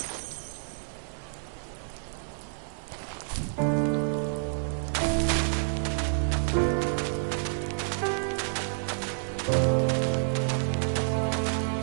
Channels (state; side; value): silent; left; digital silence